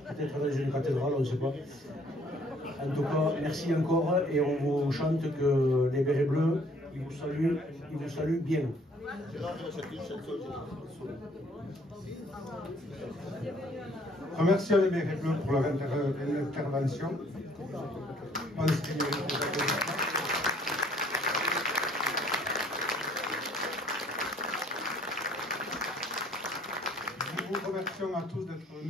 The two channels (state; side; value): normal; both; correlation 0.60